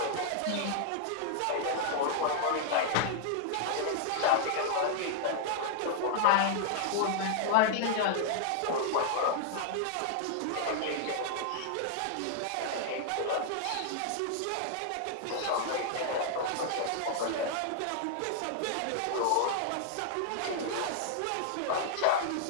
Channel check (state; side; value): different; both; correlation -0.01